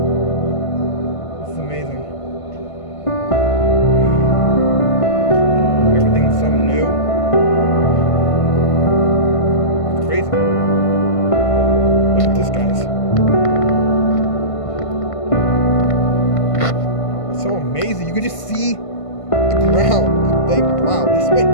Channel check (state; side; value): late; right; 1.5 ms